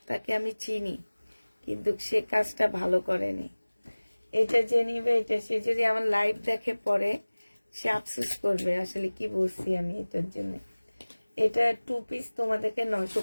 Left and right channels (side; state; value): both; inverted; correlation -1.00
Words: তাকে আমি চিনি, কিন্তু সে কাজটা ভালো করেনি। এটা যে নিবে, এটা সে যদি আমার লাইভ দেখে পরে, সে আফসোস করবে আসলে কি বলছি আমি এটার জন্য। এটা 2 পিস তোমাদেরকে